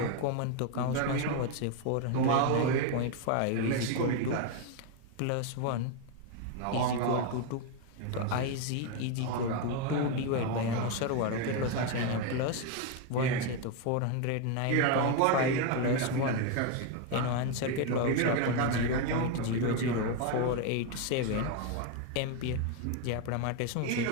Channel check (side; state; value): both; different; correlation 0.01